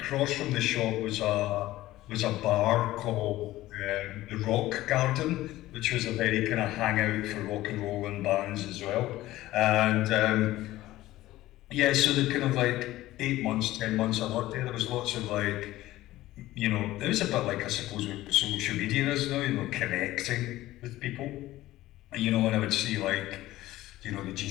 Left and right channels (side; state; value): right; quieter; 16.2 dB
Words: from the shop was a bar called the Rock Garden, which was a very kind of hangout for rock and roll and bands as well. And yeah, so the kind of like 8 months, 10 months I worked there, there was lots of like, you know, it was a bit like I suppose what social media is now, you know, connecting with people. You know, and I would see like, you know, the